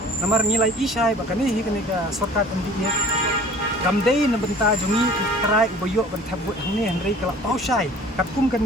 namar nilai isai bakani hi kani ka sarkar MDA kamdei na benta jungi try ubayo ban thabut hangni henry kala pausai katkum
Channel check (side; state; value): both; normal; correlation 0.48